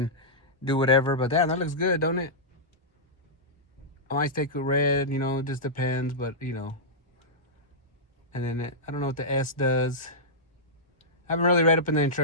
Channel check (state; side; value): normal; both; correlation -0.12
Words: do whatever. But damn, that looks good, don't it? I might take a red, you know, it just depends, but you know. And then I don't know what the S does. I haven't really read up in the